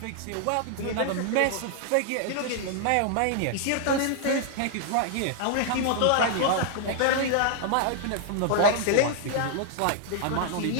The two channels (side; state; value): both; different; correlation 0.00